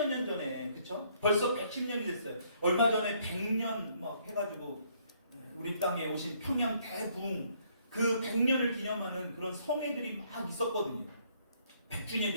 년 전에 그쵸? 벌써 110년이 됐어요. 얼마 전에 100년 막 해가지고 우리 땅에 오신 평양 대부흥 그 100년을 기념하는 그런 성회들이 막 있었거든요. 100주년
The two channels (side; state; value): both; inverted; correlation -0.67